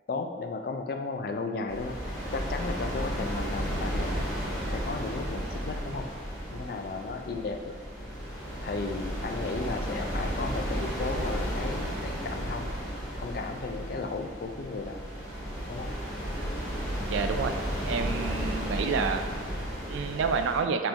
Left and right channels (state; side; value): normal; both; correlation 0.38